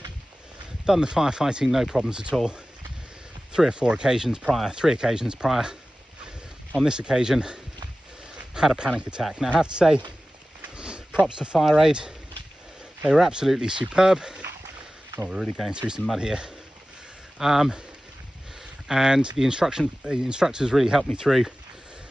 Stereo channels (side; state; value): both; normal; correlation 0.96